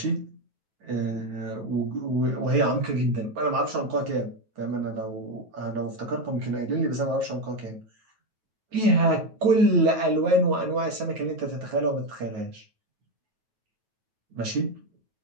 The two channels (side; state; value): left; late; 9.2 ms